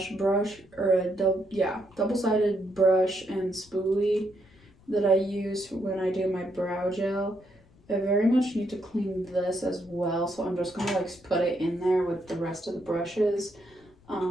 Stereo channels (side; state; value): left; noise; rumble, 28 dB below the sound